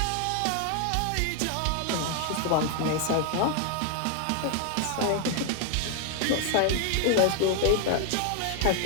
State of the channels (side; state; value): both; different; correlation 0.01